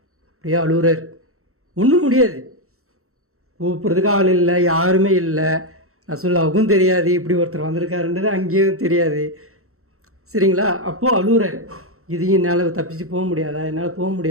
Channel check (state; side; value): late; left; 0.63 ms